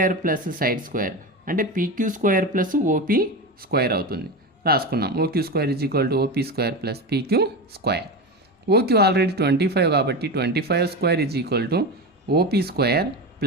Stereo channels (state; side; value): normal; both; correlation 0.21